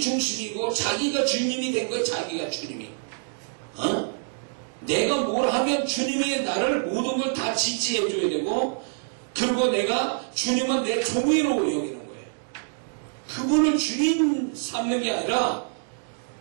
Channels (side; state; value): left; silent; digital silence